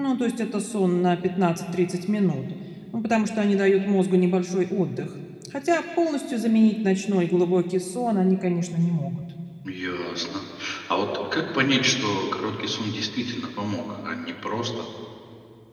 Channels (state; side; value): identical; both; correlation 1.00